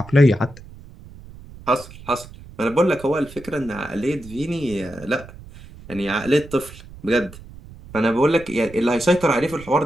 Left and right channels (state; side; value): noise; right; rumble, 18 dB below the sound